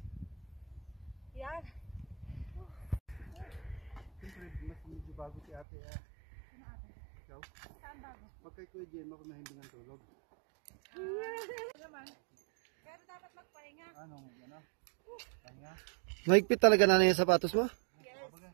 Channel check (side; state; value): left; drops out; at 5.7 s